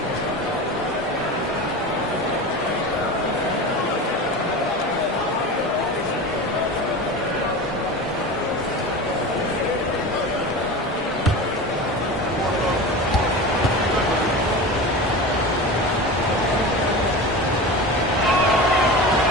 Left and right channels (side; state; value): both; normal; correlation 0.29